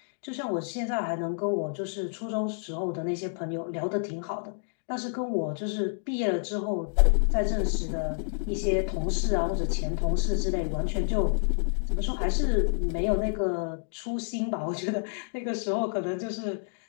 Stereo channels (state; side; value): silent; right; digital silence